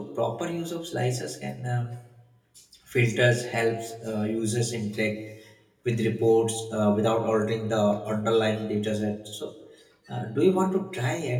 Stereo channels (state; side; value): identical; both; correlation 1.00